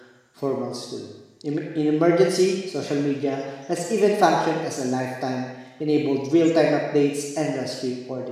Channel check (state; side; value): identical; both; correlation 1.00